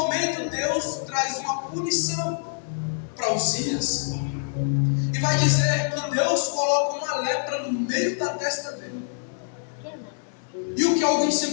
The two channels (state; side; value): silent; right; digital silence